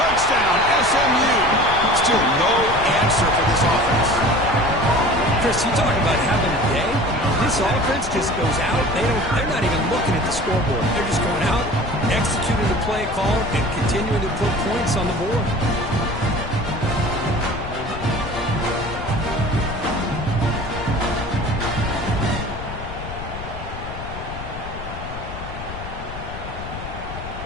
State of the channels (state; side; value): noise; left; rumble, 10 dB below the sound